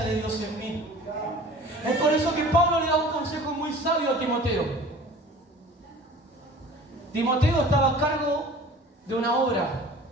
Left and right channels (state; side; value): normal; both; correlation 0.45